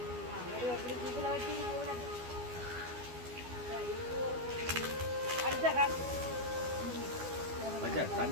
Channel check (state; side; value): late; left; 12 ms